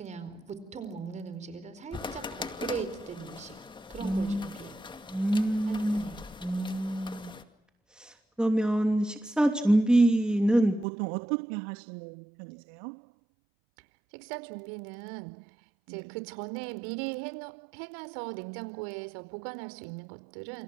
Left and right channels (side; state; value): left; drops out; at 10.9 s